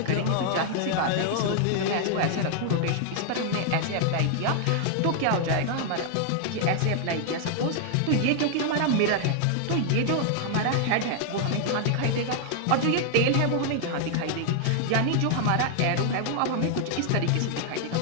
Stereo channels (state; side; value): different; both; correlation 0.00